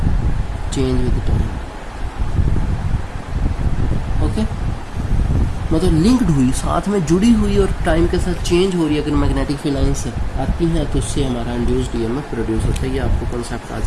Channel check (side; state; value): both; identical; correlation 1.00